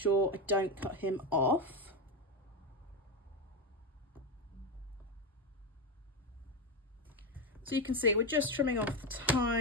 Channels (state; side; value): normal; both; correlation 0.13